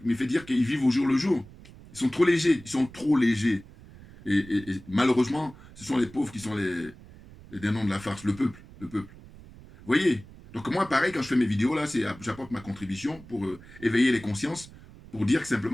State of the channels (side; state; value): right; noise; rumble, 20 dB below the sound